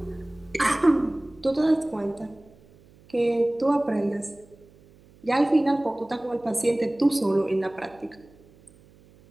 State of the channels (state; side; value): noise; right; hum, 27 dB below the sound